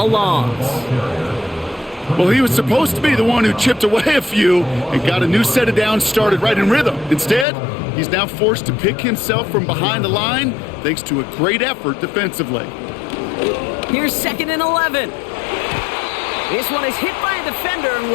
loss. Well, he was supposed to be the one who chipped away a few and got a new set of downs started right in rhythm. Instead, he's now forced to pick himself from behind the line thanks to a great effort defensively. Here's 2nd and 11. This one is hit by a defender and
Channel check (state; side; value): drops out; right; at 7.5 s